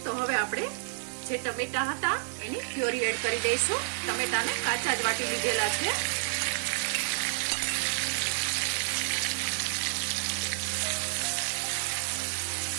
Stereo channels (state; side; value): silent; left; digital silence